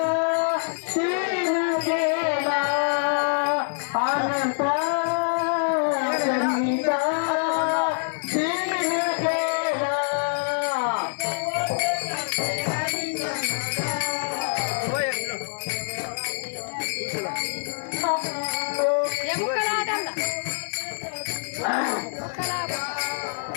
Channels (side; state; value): right; silent; digital silence